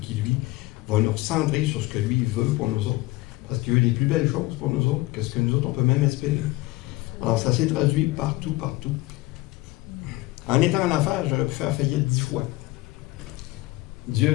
lui va nous recentrer sur ce que lui veut pour nous autres. Parce qu'il veut des plus belles choses pour nous autres que ce que nous autres on peut même espérer. Alors ça s'est traduit partout, partout. En étant en affaires, j'aurais pu faire faillite 10 fois.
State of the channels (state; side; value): quieter; right; 20.0 dB